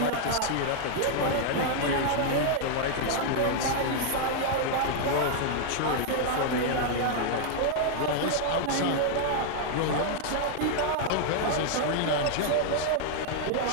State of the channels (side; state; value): both; different; correlation 0.00